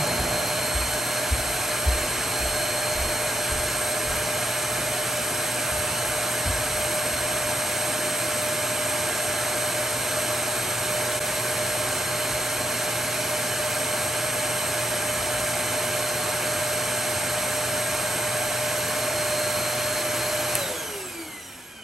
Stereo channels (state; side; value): normal; both; correlation 0.81